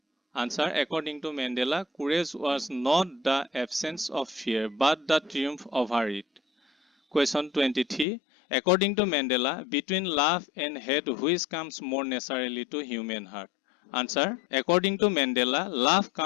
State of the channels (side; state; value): right; drops out; at 8.1 s